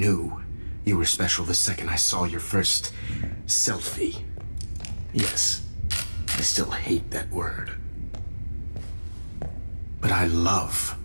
you were special the second I saw your first selfie. Yes, I still hate that word. But I love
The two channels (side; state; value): both; inverted; correlation -1.00